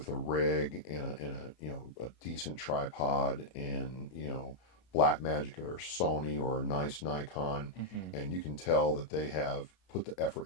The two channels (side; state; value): right; late; 33 ms